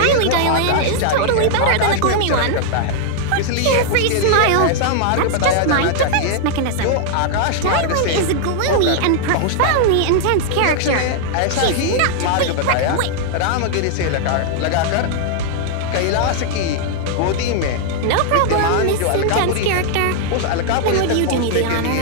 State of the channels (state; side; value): different; both; correlation -0.01